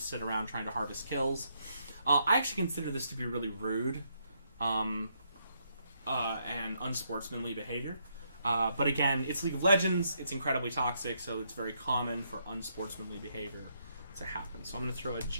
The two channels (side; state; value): both; inverted; correlation -0.75